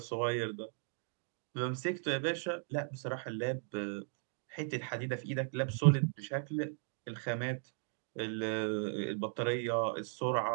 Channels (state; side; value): silent; left; 53 dB below the other